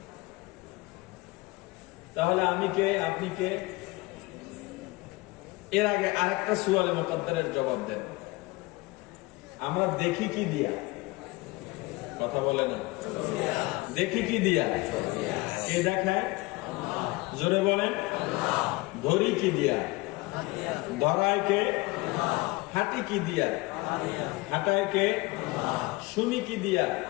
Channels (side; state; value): right; quieter; 22.9 dB